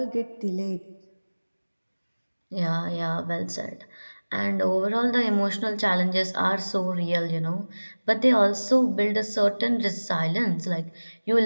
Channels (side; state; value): both; inverted; correlation -1.00